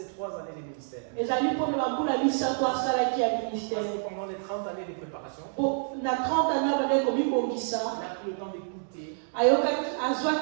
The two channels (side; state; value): left; silent; digital silence